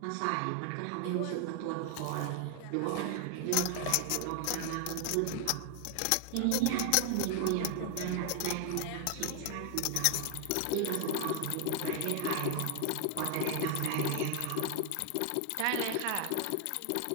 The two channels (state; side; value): different; both; correlation 0.00